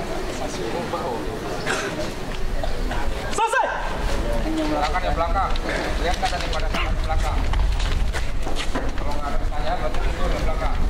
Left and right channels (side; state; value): both; identical; correlation 1.00